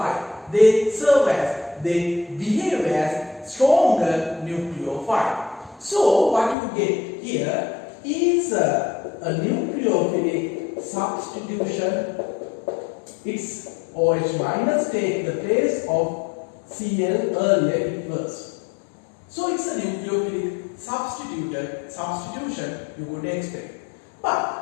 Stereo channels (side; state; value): right; drops out; at 6.6 s